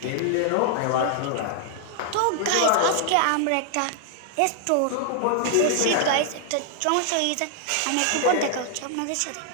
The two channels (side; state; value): both; different; correlation 0.00